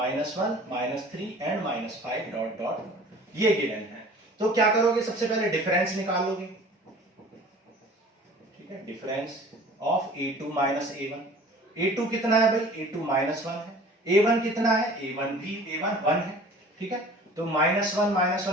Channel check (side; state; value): both; normal; correlation 0.46